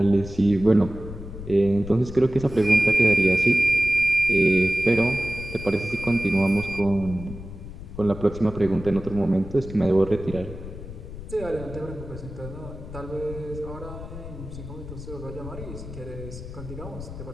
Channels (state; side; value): noise; left; rumble, 11 dB below the sound